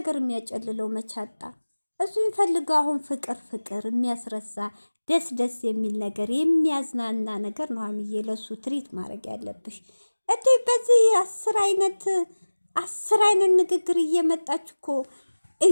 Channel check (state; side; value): inverted; both; correlation -1.00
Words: የሚያጨልለው መቻጣ እሱ የሚፈልገው አሁን ፍቅር ፍቅር የሚያስረሳ ደስ ደስ የሚል ነገር የሚያዝናና ነገር ነው። ሀይሚዬ ለሱ ትሪት ማድረግ ያለብሽ እንዴ! በዚህ 10 አይነት ንግግር እየመጣች እኮ